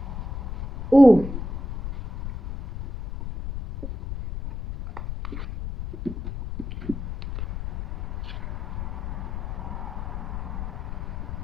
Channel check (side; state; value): left; noise; rumble, 6 dB below the sound